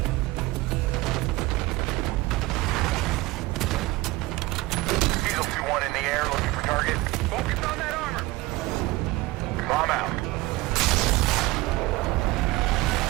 Diesel 2-1 in the air, looking for target. Focus on that armor. Bomb out.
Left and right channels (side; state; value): left; quieter; 20.0 dB